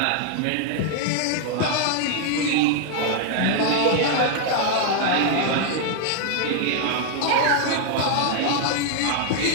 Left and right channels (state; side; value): different; both; correlation 0.00